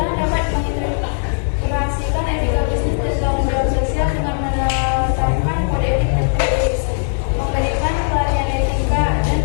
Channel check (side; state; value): right; silent; 57 dB below the other